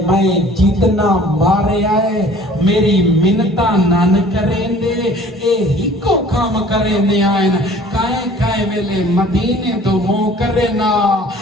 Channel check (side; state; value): both; normal; correlation 0.50